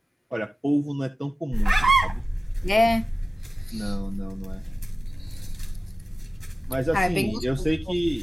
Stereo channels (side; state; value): both; normal; correlation 0.96